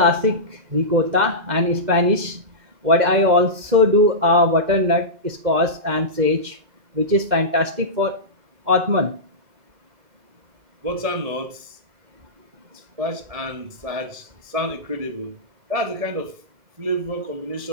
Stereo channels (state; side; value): late; left; 2.1 ms